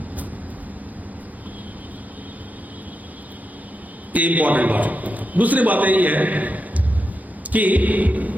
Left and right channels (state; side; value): normal; both; correlation 0.86